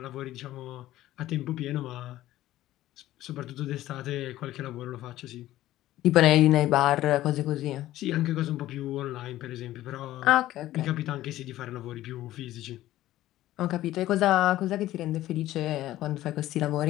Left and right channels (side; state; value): right; quieter; 14.8 dB